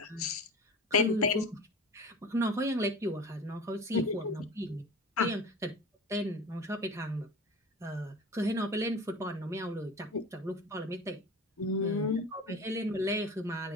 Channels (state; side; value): normal; both; correlation 0.35